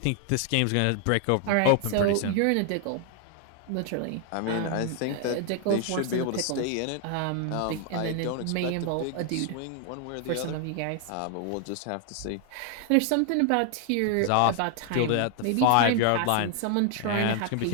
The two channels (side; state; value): both; different; correlation 0.00